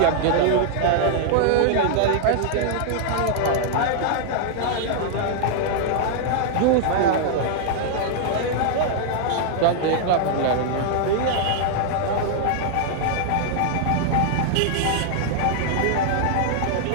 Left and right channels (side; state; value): both; different; correlation -0.01